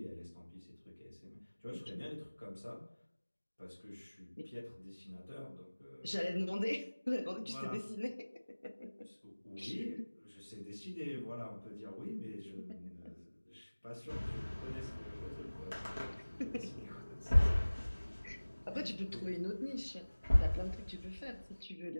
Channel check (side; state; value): both; inverted; correlation -1.00